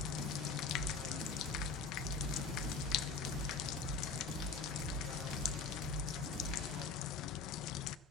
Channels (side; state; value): right; quieter; 4.6 dB